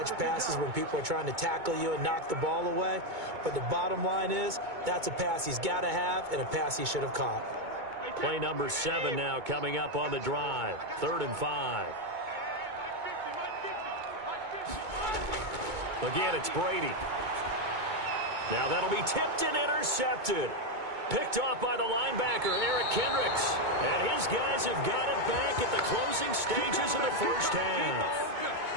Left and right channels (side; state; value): left; late; 2.2 ms